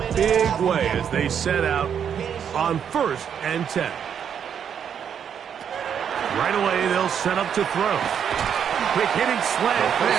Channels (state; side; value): quieter; left; 8.1 dB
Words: big way as they set out on 1st and 10. Right away, they'll set up to throw. Quick hitting slant